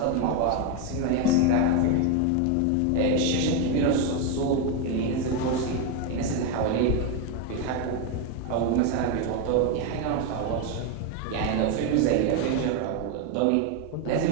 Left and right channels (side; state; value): both; different; correlation 0.02